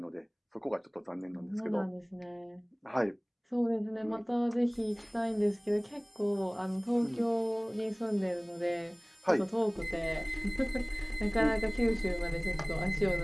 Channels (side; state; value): both; identical; correlation 1.00